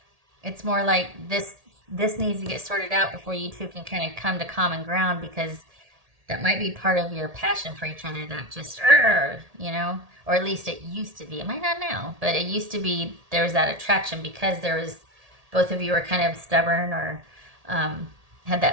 It's more like this needs to get sorted out before you two can kind of come to common ground, because that might be part of your passion for each other, that just or at least it used to be. It might not now, but it used to be. There was that attraction because there was, both of you were kind of stubborn or had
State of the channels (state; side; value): late; left; 1.8 ms